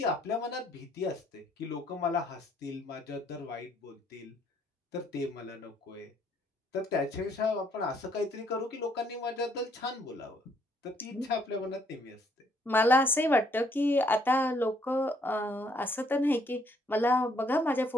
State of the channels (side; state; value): both; normal; correlation 0.68